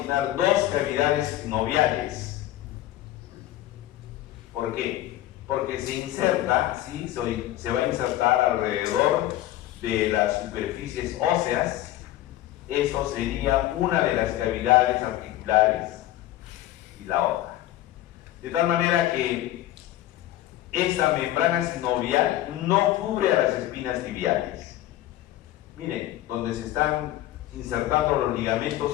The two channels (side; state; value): right; quieter; 14.5 dB